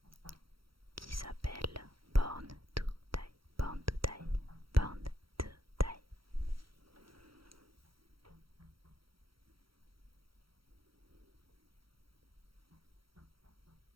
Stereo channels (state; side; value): late; left; 0.75 ms